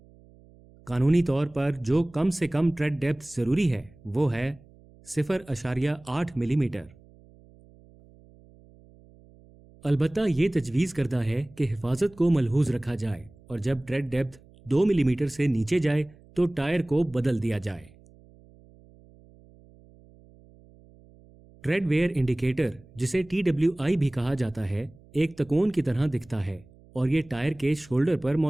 कानूनी तौर पर जो कम से कम ट्रेड डेप्थ जरूरी है वो है 0.8 मिलीमीटर। البتہ یہ تجویز کردہ ہے کہ حفاظت کو ملحوظ رکھا جائے اور جب ٹریڈ ڈیپتھ 2 ملی میٹر سے نیچے جائے تو ٹائر کو بدل دیا جائے۔ ٹریڈ ویئر انڈیکیٹر، جسے TWI بھی کہا جاتا ہے، ایک تکون کی طرح دکھتا ہے اور یہ ٹائر کے شولڈر پر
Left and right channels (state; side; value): noise; right; hum, 26 dB below the sound